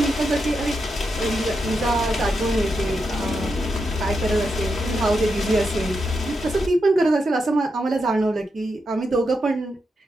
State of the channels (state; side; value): normal; both; correlation 0.85